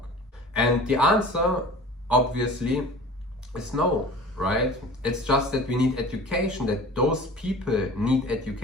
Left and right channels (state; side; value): normal; both; correlation 0.41